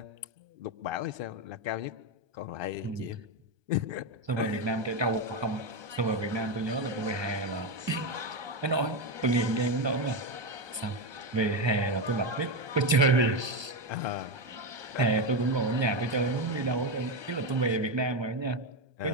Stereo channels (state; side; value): late; left; 1.3 ms